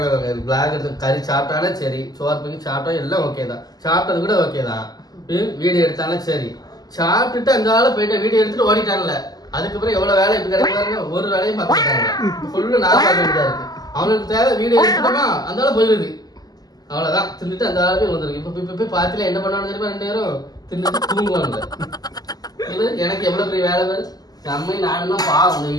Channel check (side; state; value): right; late; 0.19 ms